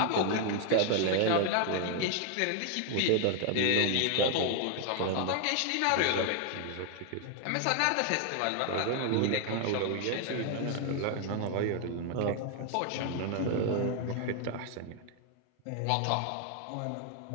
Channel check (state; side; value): different; both; correlation 0.00